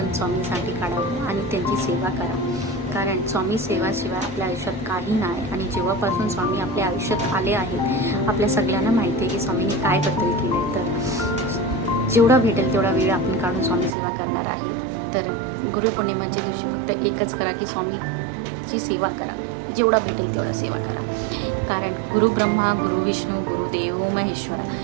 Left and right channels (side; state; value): left; drops out; at 13.9 s